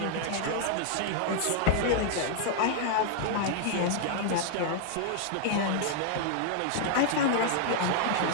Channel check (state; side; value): different; both; correlation -0.01